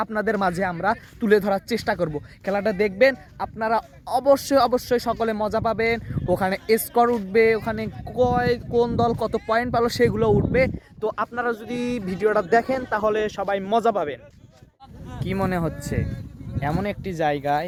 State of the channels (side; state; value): both; identical; correlation 1.00